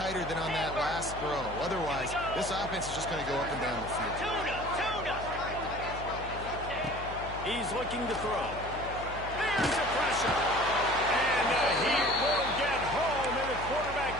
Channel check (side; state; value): left; noise; hum, 11 dB below the sound